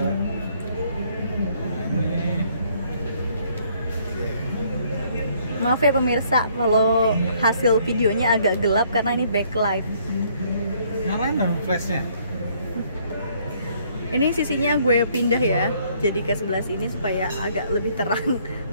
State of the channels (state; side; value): inverted; both; correlation -0.65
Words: Nah, ini. Maaf ya pemirsa kalau hasil videonya agak gelap karena ini backlight. Nyalain dong flashnya. Ini sisinya gue pindah ya, jadi ke sebelah sini supaya agak lebih terang.